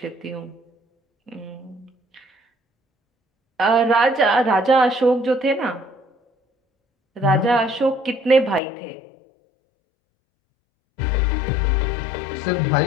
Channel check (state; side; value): drops out; right; at 8.6 s